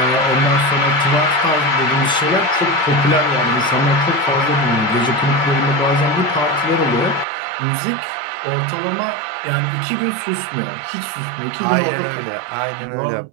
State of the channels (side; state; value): left; drops out; at 7.2 s